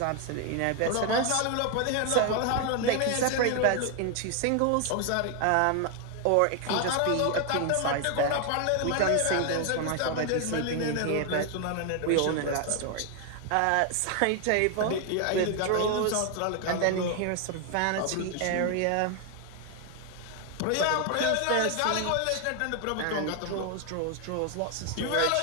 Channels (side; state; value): both; different; correlation 0.01